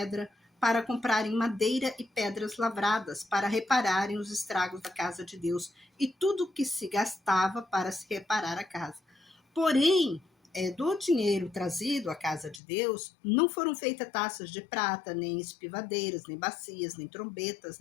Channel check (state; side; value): drops out; right; at 12.6 s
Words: para comprarem madeira e pedras lavradas, para repararem os estragos da casa de Deus, e tudo o que se gastava para se reparar a casa. Porém, do dinheiro trazido à casa de Deus, não foram feitas taças de prata, nem espivadeiras, nem bacias, nem trombetas,